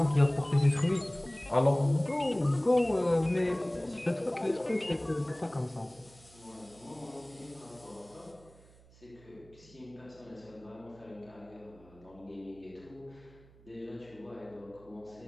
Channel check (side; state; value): right; noise; hum, 25 dB below the sound